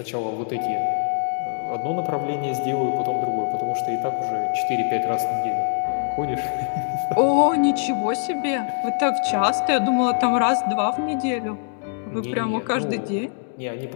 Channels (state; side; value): silent; right; digital silence